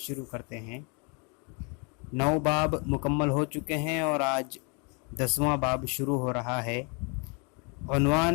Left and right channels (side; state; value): right; quieter; 34.1 dB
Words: करते हैं। 9 बाब मुकम्मल हो चुके हैं और आज 10वां बाब शुरू हो रहा है।